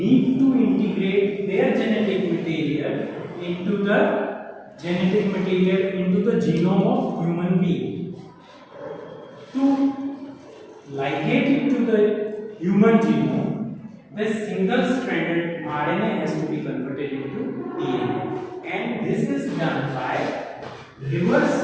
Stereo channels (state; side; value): identical; both; correlation 1.00